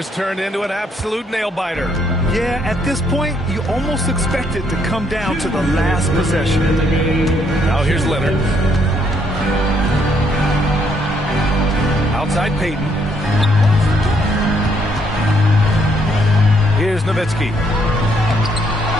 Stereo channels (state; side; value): normal; both; correlation 0.71